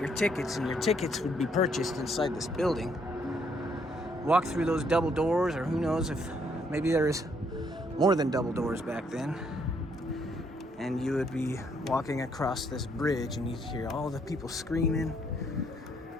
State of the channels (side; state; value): both; normal; correlation 0.70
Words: tickets, and your tickets would be purchased inside this building. Walk through those double doors, or who knows if maybe there is more than double doors back then, and you would be walking across this bridge and you'd hear all the people screaming.